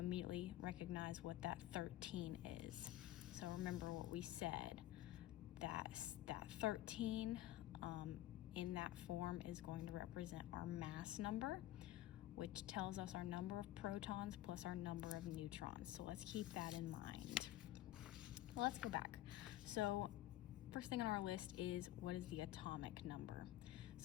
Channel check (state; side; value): quieter; right; 14.6 dB